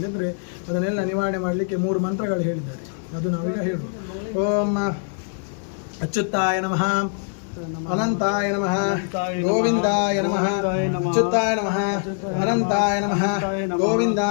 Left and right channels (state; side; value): silent; right; 63 dB below the other